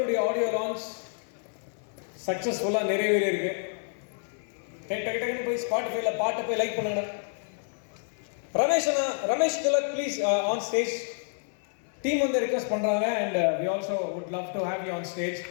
ஆடியோ லான்ச் சக்ஸஸ்ஃபுல்லாக நிறைவேறி இருக்கு. டக்குன்னு போய் ஸ்பாட்டிஃபைல பாட்டை போய் லைக் பண்ணுங்க. Ramesh Tilak please on stage. Team வந்து ரிக்வெஸ்ட் பண்ணுறாங்க and we also would love to have you on stage.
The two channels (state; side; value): silent; right; 59 dB below the other